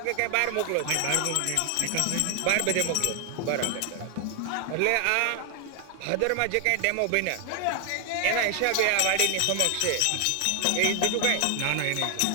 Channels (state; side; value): different; both; correlation 0.00